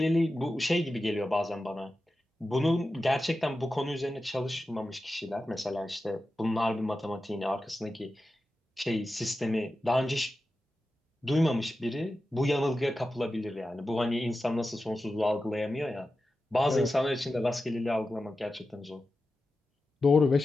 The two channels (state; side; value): normal; both; correlation 0.92